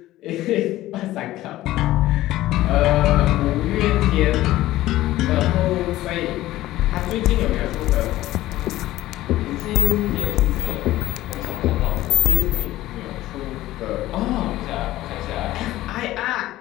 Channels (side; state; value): right; quieter; 15.7 dB